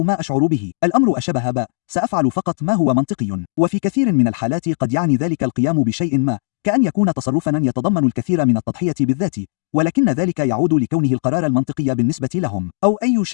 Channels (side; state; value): right; silent; digital silence